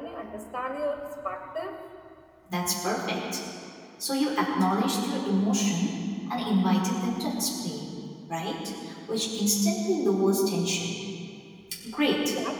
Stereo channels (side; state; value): both; identical; correlation 1.00